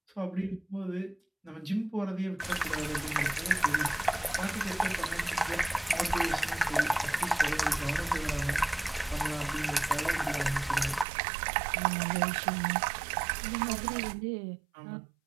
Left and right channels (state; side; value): drops out; left; at 11.1 s